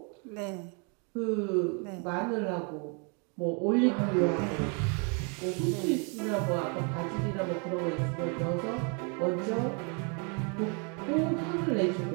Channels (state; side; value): quieter; left; 36.3 dB